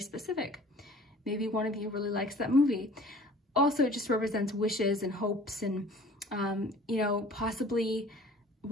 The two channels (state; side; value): normal; both; correlation 0.48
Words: Maybe one of you really likes that movie. Also, it just represents wishes and hopes and, you know, possibly